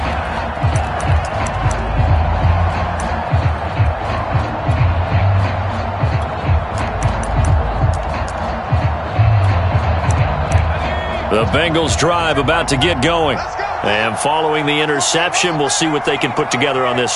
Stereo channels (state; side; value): identical; both; correlation 1.00